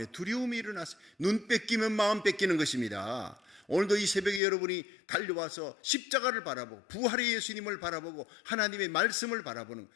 두려움이 일어났어요. 눈 뺏기면 마음 뺏기는 것입니다. 오늘도 이 새벽에 여러분이 달려와서 십자가를 바라보고 부활의 예수님을 바라보고 하나님의 말씀을 바라보는,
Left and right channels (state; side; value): drops out; right; at 4.4 s